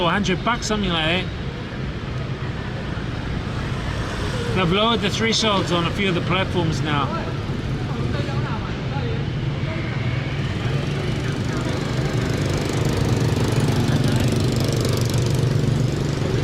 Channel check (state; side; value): identical; both; correlation 1.00